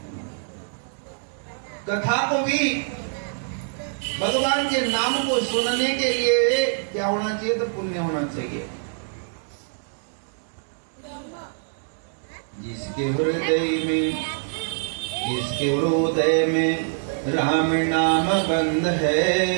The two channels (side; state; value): left; silent; digital silence